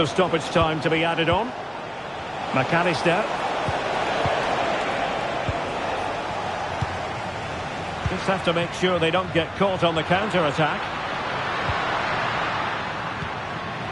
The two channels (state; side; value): identical; both; correlation 1.00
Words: stoppage time to be added on. McAllister. Just have to make sure they don't get caught on the counter-attack.